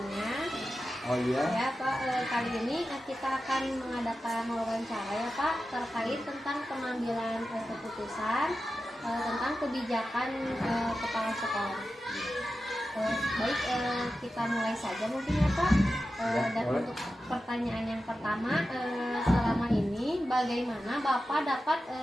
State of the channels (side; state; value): both; normal; correlation 0.92